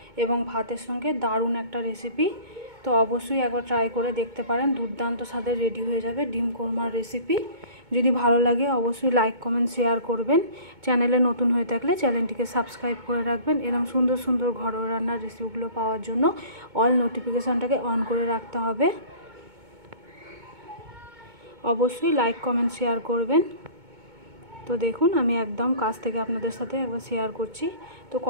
এবং ভাতের সঙ্গে দারুণ একটা রেসিপি। তো অবশ্যই একবার ট্রাই করে দেখতে পারেন, দুর্দান্ত স্বাদের রেডি হয়ে যাবে ডিম কোরমার রেসিপি। যদি ভালো লাগে অবশ্যই লাইক কমেন্ট শেয়ার করবেন। চ্যানেলে নতুন হয়ে থাকলে চ্যানেলটিকে সাবস্ক্রাইব করে রাখবেন। এরকম সুন্দর সুন্দর ঘরোয়া রান্নার রেসিপিগুলো পাওয়ার জন্য অল নোটিফিকেশানটাকে অন করে রাখতে হবে। অবশ্যই লাইক কমেন্ট শেয়ার করবেন। তো দেখুন আমি একদম কাছ থেকে আপনাদের সাথে একবার শেয়ার করছি। তো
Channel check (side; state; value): left; late; 2.2 ms